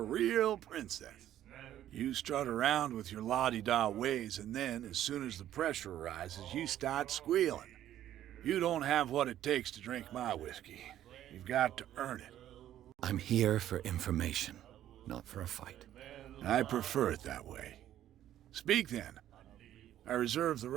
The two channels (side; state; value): left; quieter; 12.0 dB